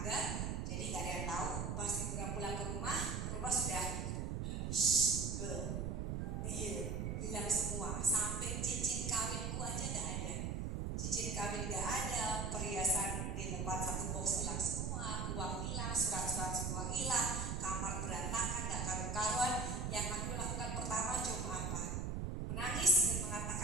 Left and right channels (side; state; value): right; noise; rumble, 1 dB below the sound